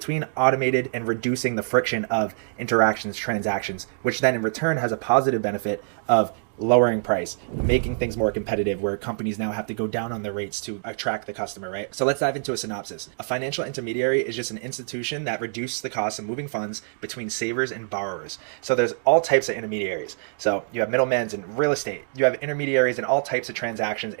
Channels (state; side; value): silent; left; digital silence